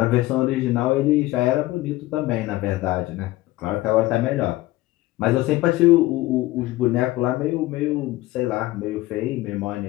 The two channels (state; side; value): quieter; right; 17.8 dB